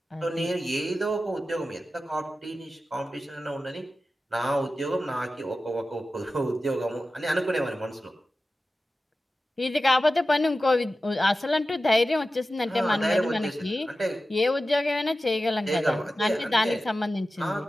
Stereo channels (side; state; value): both; normal; correlation 0.94